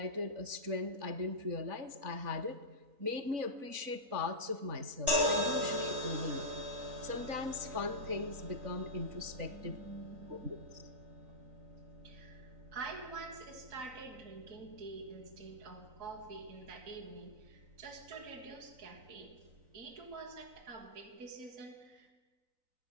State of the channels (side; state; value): left; late; 3.9 ms